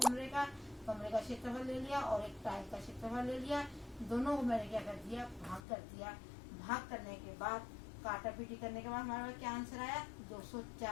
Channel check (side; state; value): right; drops out; at 5.6 s